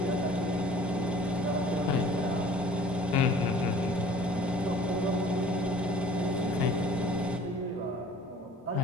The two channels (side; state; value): both; normal; correlation 0.49